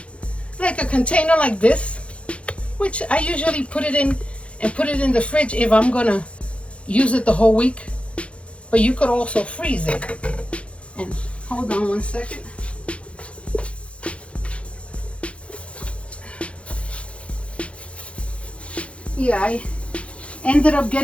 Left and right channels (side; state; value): right; late; 0.061 ms